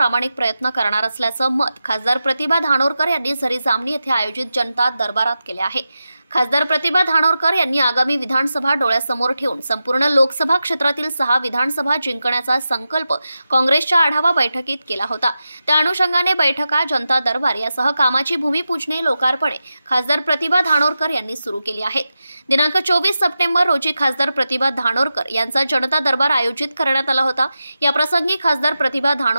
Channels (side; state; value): both; inverted; correlation -0.91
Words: प्रयत्न करणार असल्याचं मत खासदार प्रतिभा धानोरकर यांनी झरी जामणी येथे आयोजित जनता दरबारात केले आहे। खासदार प्रतिभा धानोरकर यांनी आगामी विधानसभा डोळ्यासमोर ठेवून संपूर्ण लोकसभा क्षेत्रातील 6 विधानसभा जिंकण्याचा संकल्प काँग्रेसच्या आढावा बैठकीत केला होता। त्या अनुषंगाने बैठका, जनता दरबार यासह कामाची भूमिपूजने, लोकार्पणे खासदार प्रतिभा धानोरकर यांनी सुरू केली आहेत। दिनांक 24 सप्टेंबर रोजी खासदार प्रतिभा धानोरकर यांचा जनता दरबार आयोजित करण्यात आला होता। या प्रसंगी खासदार प्रतिभा